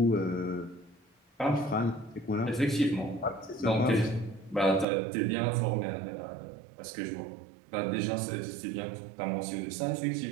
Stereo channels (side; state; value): left; drops out; at 4.9 s